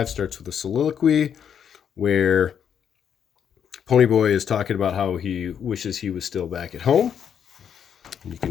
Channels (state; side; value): quieter; right; 8.2 dB